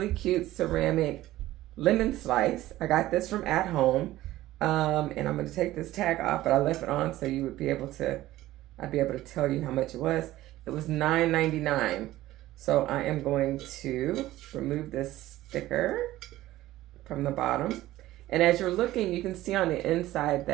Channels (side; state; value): left; quieter; 15.7 dB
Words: cute ceramic lemon slice. I got this from At Home, and I'm going to take this tag off, but I left it on so you would be able to, I'd be able to tell you how much it was. It was $9.99. So I am going to remove this sticker from the bottom, and as you're looking, you can see on the inside